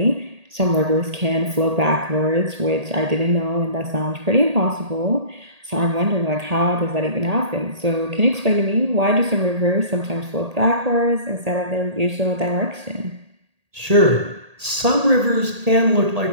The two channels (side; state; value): left; late; 1.8 ms